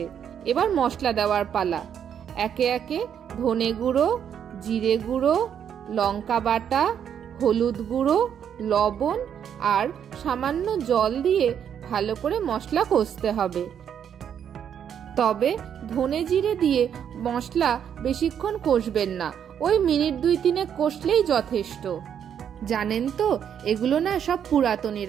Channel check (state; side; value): quieter; left; 8.6 dB